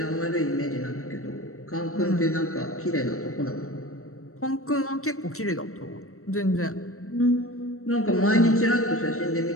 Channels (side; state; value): right; late; 0.63 ms